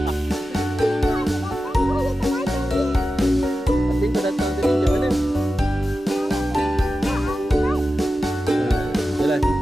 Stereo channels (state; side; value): normal; both; correlation 0.93